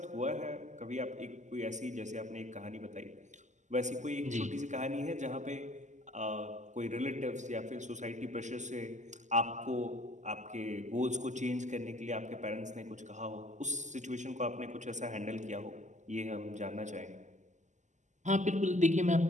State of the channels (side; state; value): left; late; 0.34 ms